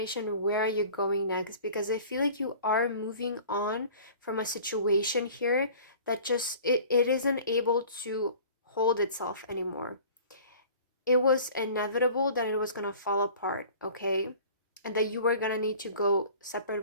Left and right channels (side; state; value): both; inverted; correlation -0.45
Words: Where are you going next? Because I feel like you are moving on from a situation here that just it isn't able to hold itself anymore. It was inevitable that it was going to fall apart, okay? And that you were going to need to go